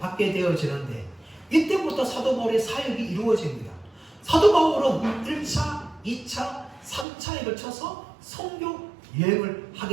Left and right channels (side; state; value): left; drops out; at 7.1 s